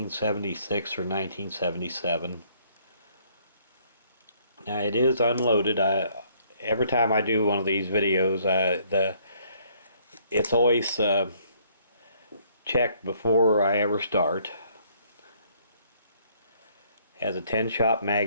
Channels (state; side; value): inverted; both; correlation -0.64